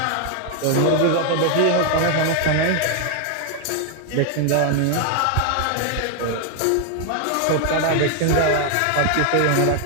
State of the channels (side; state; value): both; different; correlation 0.00